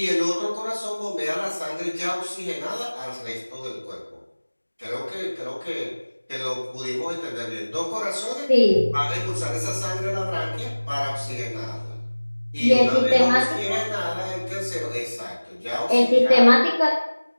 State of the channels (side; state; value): both; inverted; correlation -1.00